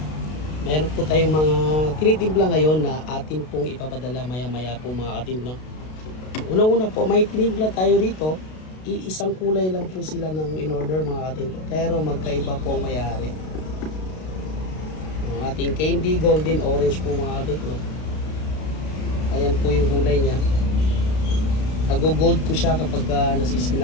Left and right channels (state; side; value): late; right; 32 ms